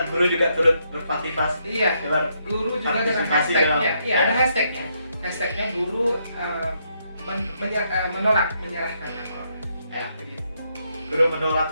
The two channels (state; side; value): inverted; both; correlation -0.76